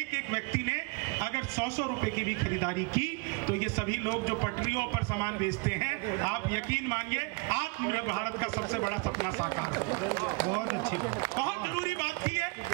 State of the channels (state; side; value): quieter; left; 28.9 dB